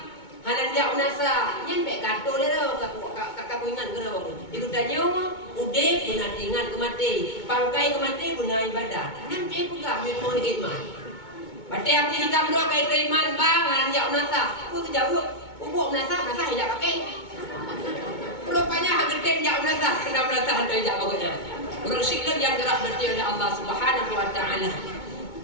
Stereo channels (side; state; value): right; late; 2.2 ms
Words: hanan dia unasa, yang baik kata dia tu, kakak ingat ke apa? Dia tanya, udah pernah ingat kemati, pangkai kemati pernah ibadat. Nanti juga mau iman. Batik Abu Sigam dua kait iman bang, hanan dia unasa. Aku kejauh, ubuk unasa tidak pakai. Rupanya hagetin dia unasa, kena unasa hantar dia bagusnya. Orang sikap yang dirahmati oleh Allah Subhanahu wa taala.